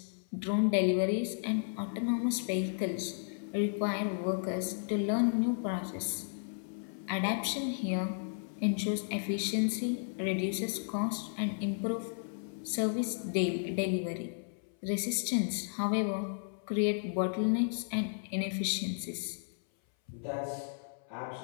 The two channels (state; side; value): silent; right; 55 dB below the other